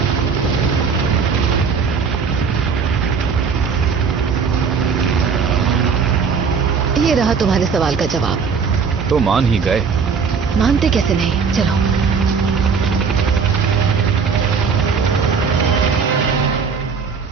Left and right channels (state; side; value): quieter; left; 5.7 dB